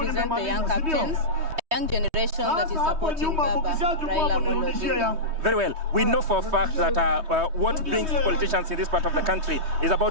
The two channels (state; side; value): late; left; 3.2 ms